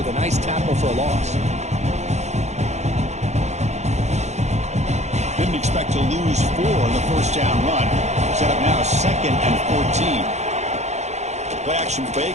a nice tackle for a loss. Didn't expect to lose 4 on the first down run. Set up now 2nd and 14. Play action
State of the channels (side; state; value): left; late; 0.33 ms